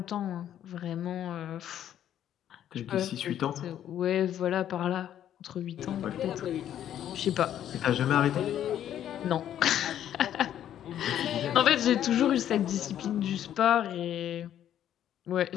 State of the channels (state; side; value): quieter; right; 10.8 dB